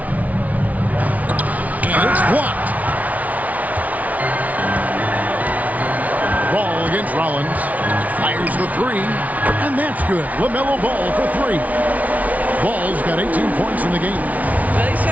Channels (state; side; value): late; left; 0.071 ms